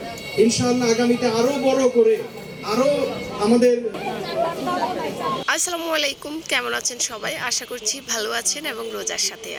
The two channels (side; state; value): both; identical; correlation 1.00